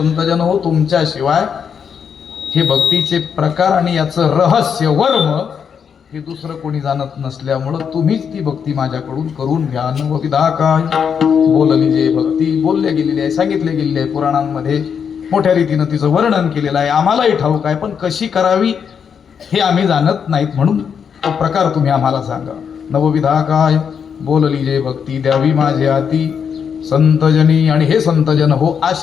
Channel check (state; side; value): quieter; right; 7.1 dB